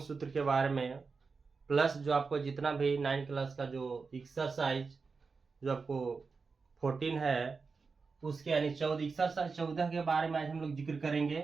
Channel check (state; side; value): quieter; left; 4.7 dB